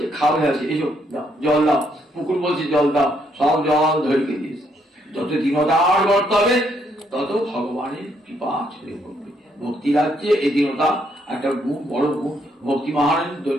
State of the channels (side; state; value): both; normal; correlation 0.73